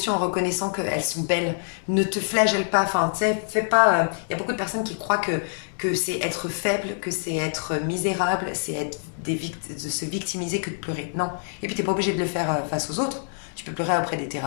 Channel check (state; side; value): silent; right; digital silence